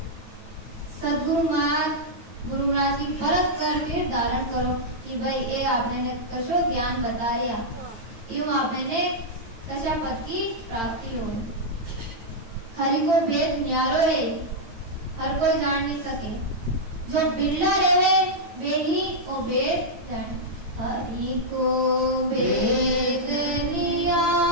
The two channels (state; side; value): late; left; 8.8 ms